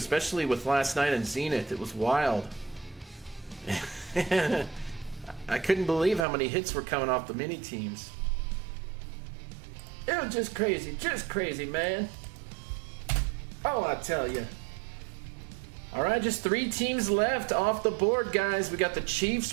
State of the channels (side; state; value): left; drops out; at 6.2 s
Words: with last night in Zenith. It was wild. I couldn't believe how many hits were coming off the mini teams. It was just crazy, man. Oh, I tell you. All right, just 3 teams left off the board, guys. We got the